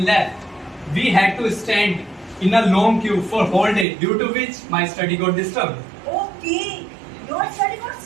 left. We had to stand in a long queue for whole day, due to which my study got disturbed. Okay, your study got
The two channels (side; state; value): left; drops out; at 3.9 s